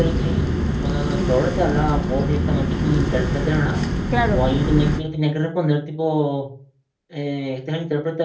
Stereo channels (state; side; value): identical; both; correlation 1.00